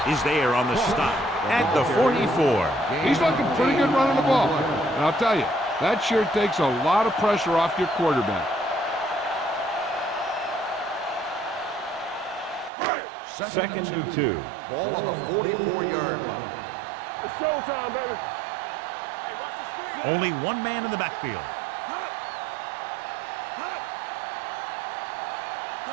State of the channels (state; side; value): drops out; left; at 12.7 s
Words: is there on the stop at the 44. He's looking pretty good running the ball. And I'll tell you, that sure takes a lot of pressure off your quarterback. Second and 2. Ball on the 44-yard line. It's showtime, baby. Hey, watch the screen. Only one man in the backfield.